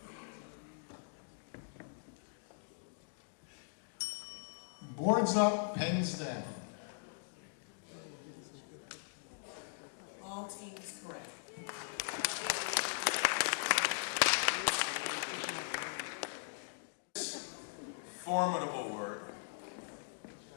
Boards up, pens down. All teams correct. Formidable word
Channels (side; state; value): right; silent; digital silence